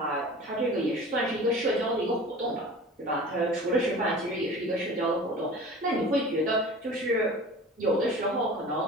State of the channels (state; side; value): normal; both; correlation 0.40